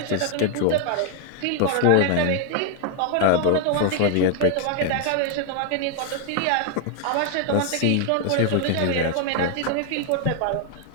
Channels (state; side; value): different; both; correlation 0.00